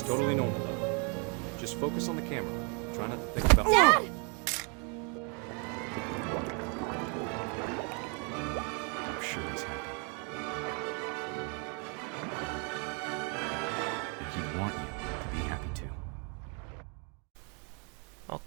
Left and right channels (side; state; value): left; quieter; 36.1 dB